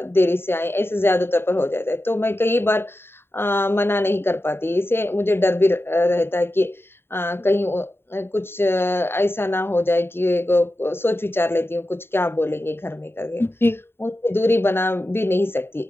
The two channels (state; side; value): late; right; 0.11 ms